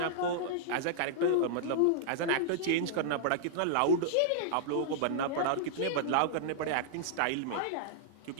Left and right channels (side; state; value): both; different; correlation -0.01